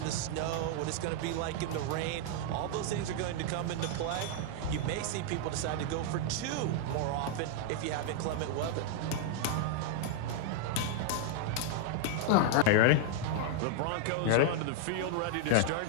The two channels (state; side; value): different; both; correlation 0.00